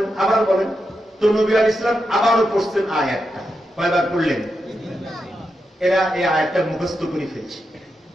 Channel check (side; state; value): both; normal; correlation 0.87